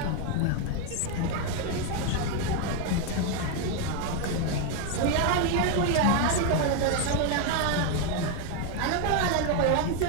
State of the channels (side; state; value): both; different; correlation 0.01